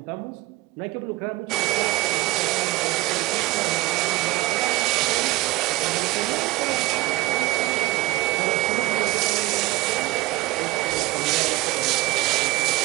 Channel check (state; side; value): quieter; left; 19.6 dB